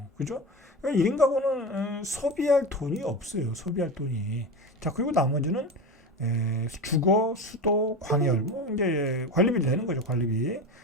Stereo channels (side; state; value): both; normal; correlation 0.24